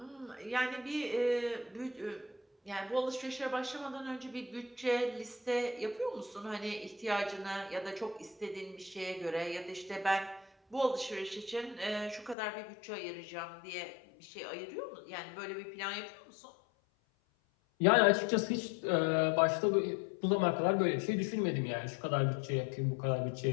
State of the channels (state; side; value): drops out; right; at 12.4 s